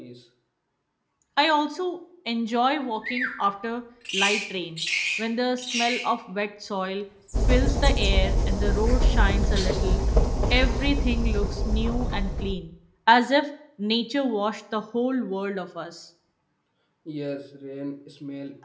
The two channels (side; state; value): both; identical; correlation 1.00